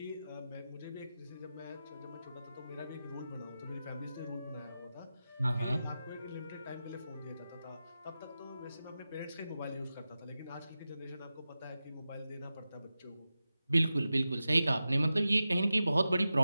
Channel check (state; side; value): inverted; both; correlation -0.93